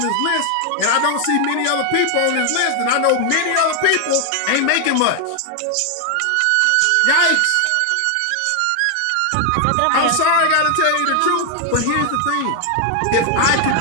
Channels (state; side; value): different; both; correlation 0.00